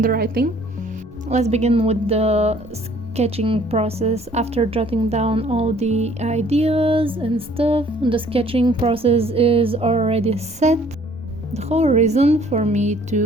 Let's begin with the sketching process. After jotting down all the ideas and stuff, the sketching process is already set. The whole reason for me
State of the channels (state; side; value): normal; both; correlation 0.57